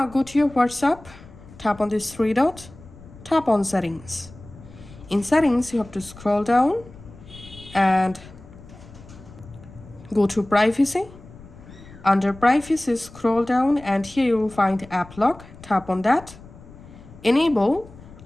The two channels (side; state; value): left; noise; rumble, 19 dB below the sound